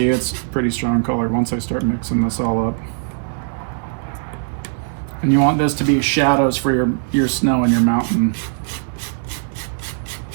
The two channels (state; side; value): silent; left; 65 dB below the other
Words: it's pretty strong color once I start mixing this all up. And you want this to be shadows for your snow and your mountain.